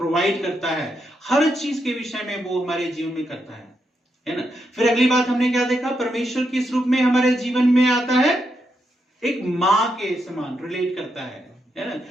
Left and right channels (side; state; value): both; normal; correlation 0.82